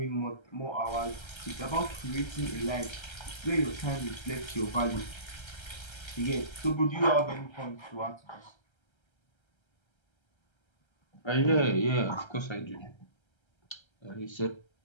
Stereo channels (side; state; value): right; late; 1.3 ms